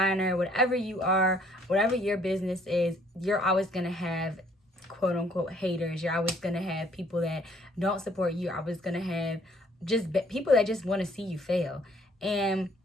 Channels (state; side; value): normal; both; correlation 0.62